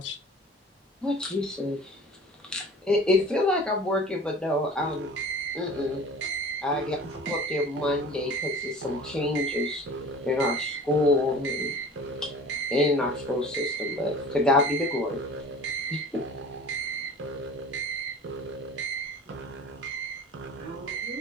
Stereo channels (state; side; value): normal; both; correlation 0.42